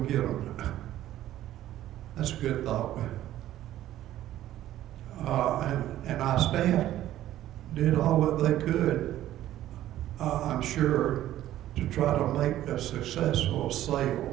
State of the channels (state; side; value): quieter; left; 13.3 dB